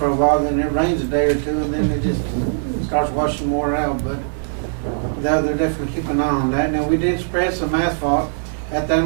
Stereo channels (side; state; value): left; silent; digital silence